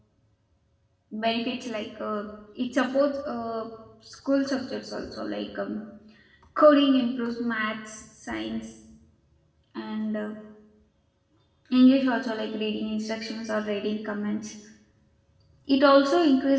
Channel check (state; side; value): identical; both; correlation 1.00